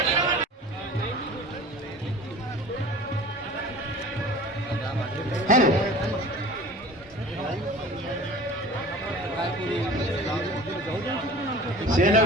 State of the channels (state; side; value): normal; both; correlation 0.41